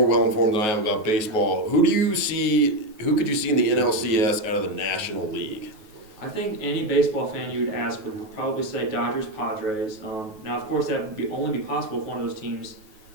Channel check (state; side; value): late; left; 9.3 ms